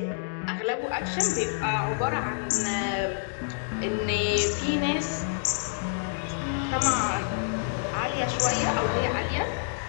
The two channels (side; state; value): right; silent; digital silence